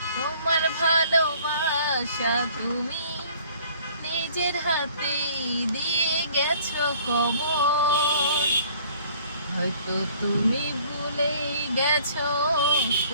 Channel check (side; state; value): both; inverted; correlation -0.54